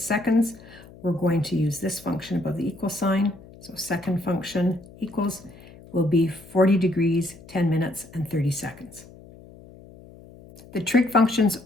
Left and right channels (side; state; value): left; noise; hum, 21 dB below the sound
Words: seconds, we're going to use this function above the equal sign. So second function equals will be 40 degrees, 10 minutes, and 30 seconds. The trig functions